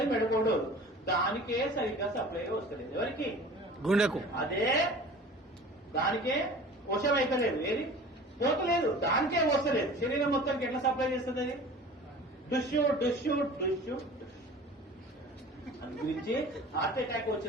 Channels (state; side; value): normal; both; correlation 0.42